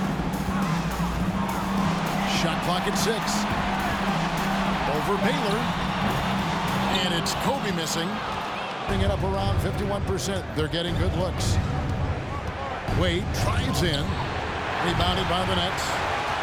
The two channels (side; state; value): both; identical; correlation 1.00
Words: Shot clock at 6. Over Baylor. And it's Kobe missing. Bring it up around 51%. They're getting good looks. Wade drives in. Rebounded by the Nets.